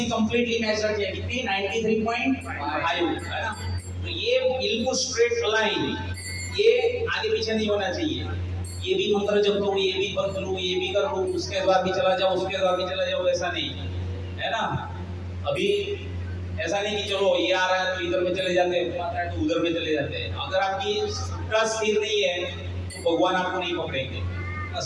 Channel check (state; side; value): identical; both; correlation 1.00